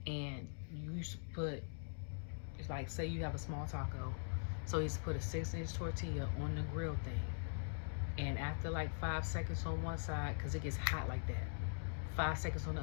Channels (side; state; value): right; silent; digital silence